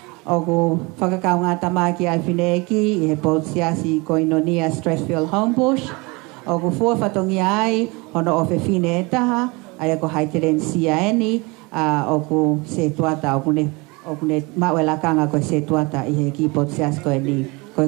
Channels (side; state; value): left; quieter; 26.2 dB